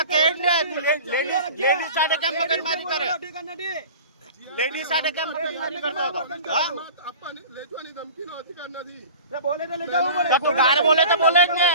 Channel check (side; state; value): both; inverted; correlation -0.39